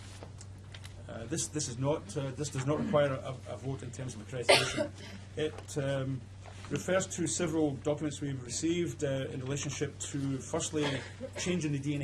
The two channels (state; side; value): identical; both; correlation 1.00